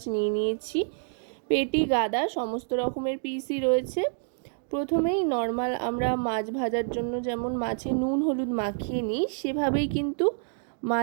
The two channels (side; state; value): left; silent; digital silence